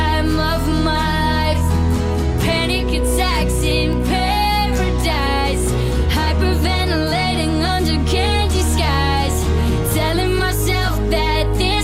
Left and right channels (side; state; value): both; identical; correlation 1.00